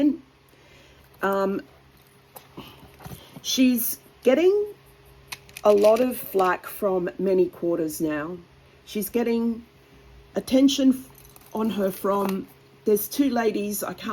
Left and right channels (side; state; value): both; identical; correlation 1.00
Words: She's getting a lot of flack from many quarters now. She's getting attention on her from, there's 2 ladies, I